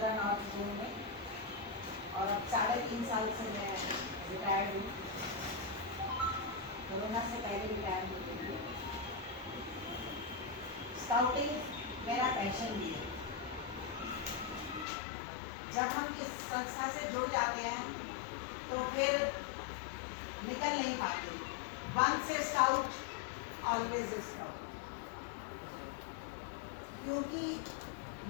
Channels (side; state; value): right; drops out; at 14.9 s